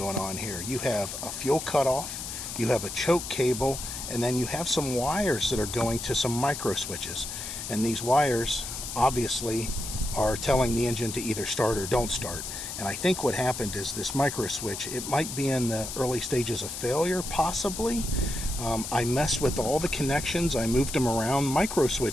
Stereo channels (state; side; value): noise; left; hiss, 7 dB below the sound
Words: on here. You have a fuel cutoff, you have a choke cable, and then you have some wires that are going to some micro switches. And these wires obviously are telling the engine to either start or don't start. And I think what happened is this micro switch, it might be in the early stages of failure, possibly. I messed with all the connections, I moved them around. Micro